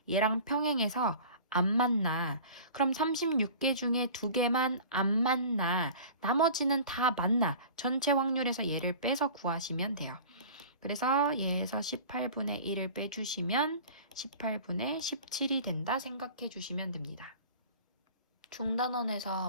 얘랑 평행해서 안 만나. 그럼 36개 중에 2개만 안 만나. 나머지는 다 만나. 전체 확률에서 얘를 빼서 구하시면 돼요. 그래서 얘에서 18분의 1을 빼주시면 18분의 17이 된다 생각해 주시면 됩니다.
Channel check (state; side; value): inverted; both; correlation -0.41